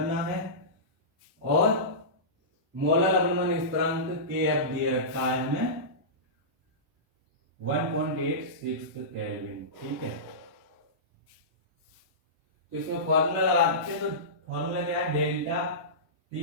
है, और मोलर लवणवन स्थिरांक Kf दिए रखा है हमें 1.86 केल्विन। ठीक है, तो इसमें फॉर्मूला लगाते हैं, तो फॉर्मूला क्या है, डेल्टा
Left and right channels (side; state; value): left; late; 1.1 ms